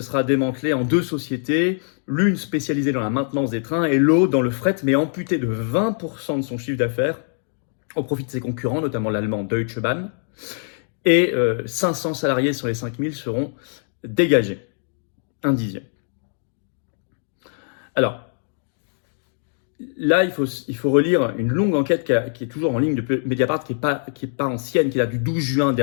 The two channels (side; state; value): right; silent; digital silence